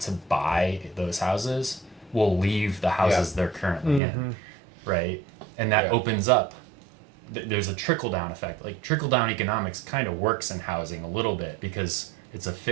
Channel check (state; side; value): drops out; left; at 4.0 s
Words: to buy those houses will leave the houses they're currently in, right? And that opens up. There's a trickle-down effect. Like, trickle-down economics kind of works in housing a little bit, because it's a